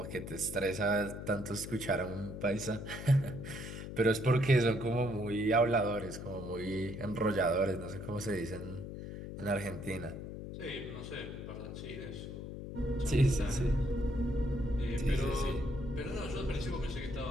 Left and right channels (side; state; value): left; noise; hum, 8 dB below the sound